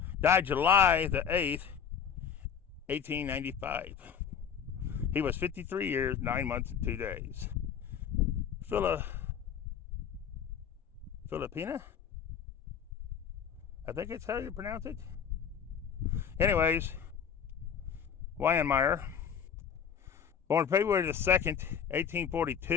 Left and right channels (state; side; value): quieter; right; 7.7 dB